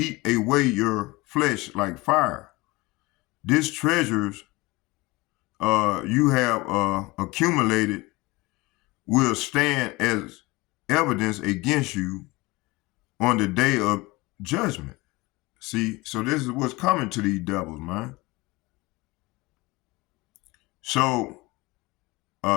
away your flesh like fire. These treasures you have accumulated will stand as evidence against you on the day of judgment. See, so this is what's coming to these devils, man. So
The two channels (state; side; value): quieter; right; 22.5 dB